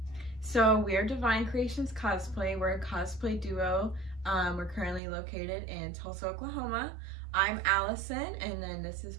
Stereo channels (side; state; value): left; drops out; at 5.0 s